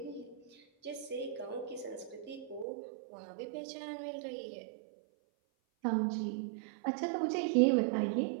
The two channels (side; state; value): left; drops out; at 2.7 s